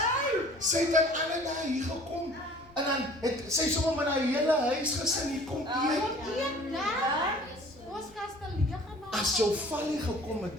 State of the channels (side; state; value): left; noise; rumble, 26 dB below the sound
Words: Sy het aan alle dae hier gekom en dan het sy sommer met haar hele huisgesin hier kom eet. As jou valie gekom het